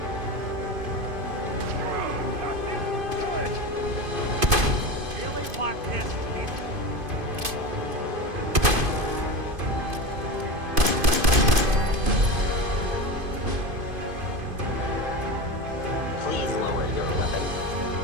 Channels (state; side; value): late; left; 2.5 ms